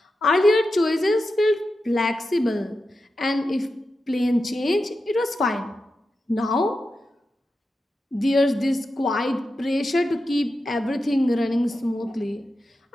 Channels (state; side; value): normal; both; correlation 0.90